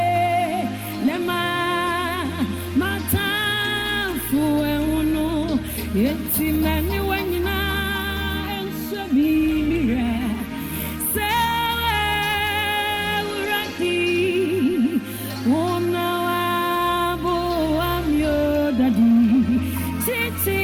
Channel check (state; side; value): identical; both; correlation 1.00